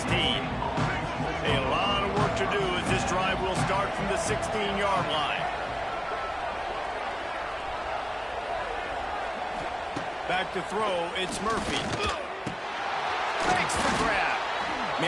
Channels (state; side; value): identical; both; correlation 1.00